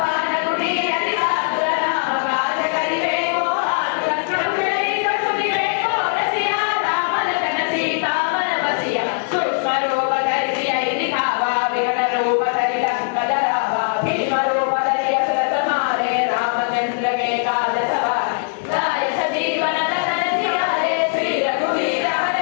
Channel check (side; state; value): right; silent; 66 dB below the other